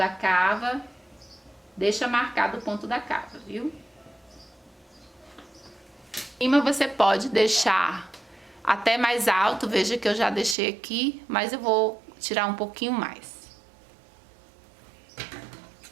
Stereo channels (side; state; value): left; drops out; at 10.6 s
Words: cava, deixa marcado o ponto da cava, viu? Em cima você pode deixar até mais alto, veja que eu já deixei aqui, mas eu vou tirar um pouquinho mais.